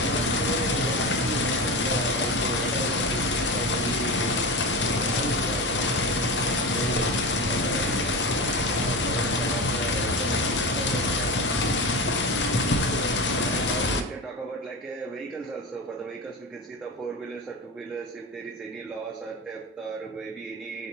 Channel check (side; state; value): both; normal; correlation 0.24